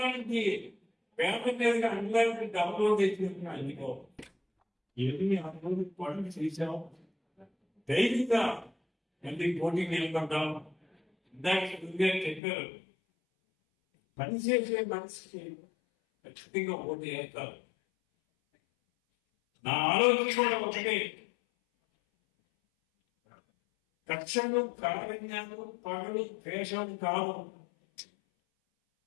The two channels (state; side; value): drops out; right; at 12.4 s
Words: నుంచి పేద మీదుగా అండ్లాంటి డబల్ రోడ్ వేసిందంటే అందుకోవాలి. ఏమి అభివృద్ధి పనులు చేశాం. ధైర్యంగా ఎందుకు పోటీ నిలబడ్డాం. ఇందాక చెప్పారు, పనిచేసే మనిషికి ఖచ్చితంగా పోటీ చేస్తారు. నా ఆలోచన కూడా ఒకటే, కక్షలు కారణ్యాలు పగలు ద్వేషాలు కాదు.